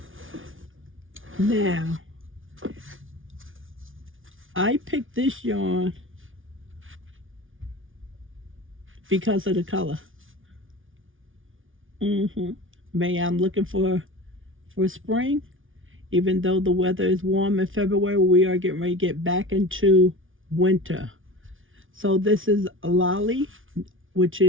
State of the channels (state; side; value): late; left; 0.57 ms